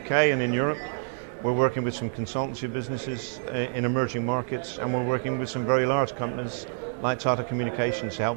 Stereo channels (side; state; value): left; silent; 60 dB below the other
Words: and in Europe. We're working with some consultancy businesses in emerging markets, and we're working with some very large companies like Tata Communications to help